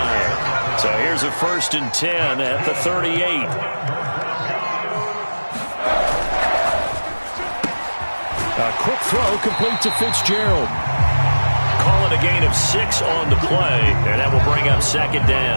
So here's a 1st and 10 at the 38. A quick throw complete to Fitzgerald. Call it a gain of 6 on the play, and that will bring up second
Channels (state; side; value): inverted; both; correlation -1.00